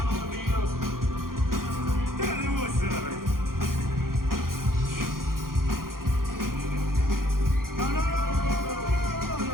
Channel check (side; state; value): left; late; 0.92 ms